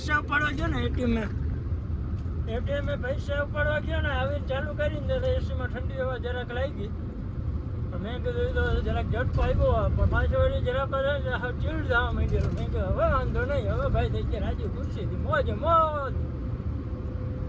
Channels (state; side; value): identical; both; correlation 1.00